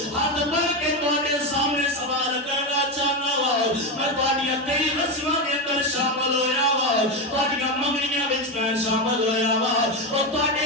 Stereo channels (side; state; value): both; normal; correlation 0.13